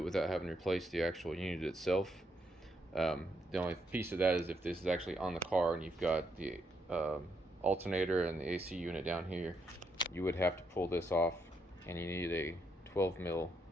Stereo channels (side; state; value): both; normal; correlation 0.77